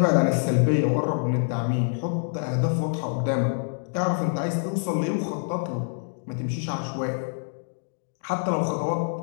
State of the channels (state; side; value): silent; right; digital silence